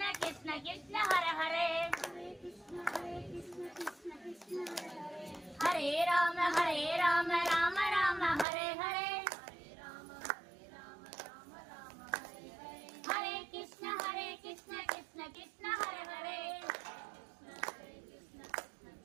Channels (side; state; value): left; drops out; at 8.5 s